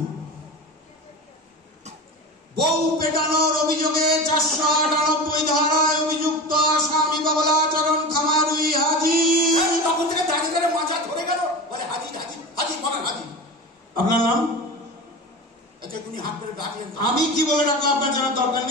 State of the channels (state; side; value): normal; both; correlation 0.29